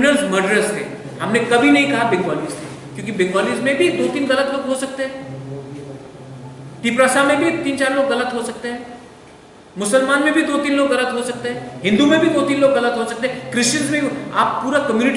मर्डरर्स थे। हमने कभी नहीं कहा बंगालीज थे, क्योंकि बंगालीज में भी 2-3 गलत लोग हो सकते हैं, तिपरासा में भी 3-4 लोग गलत हो सकते हैं, मुसलमान में भी 2-3 लोग गलत हो सकते हैं, हिंदू में भी 2-3 लोग गलत हो सकते हैं, क्रिश्चियंस में भी। आप पूरा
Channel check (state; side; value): identical; both; correlation 1.00